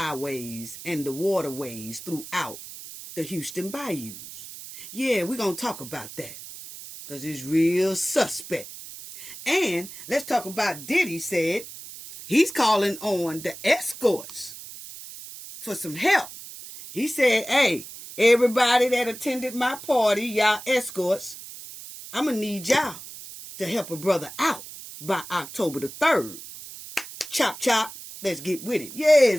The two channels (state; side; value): noise; right; hiss, 13 dB below the sound